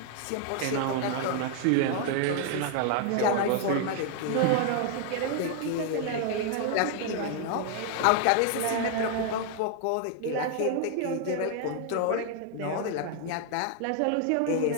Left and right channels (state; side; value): different; both; correlation 0.00